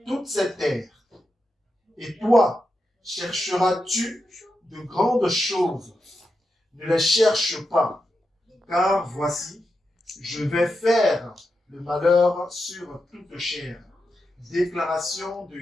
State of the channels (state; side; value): normal; both; correlation 0.88